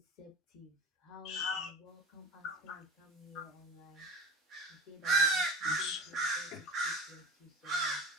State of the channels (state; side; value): normal; both; correlation 0.35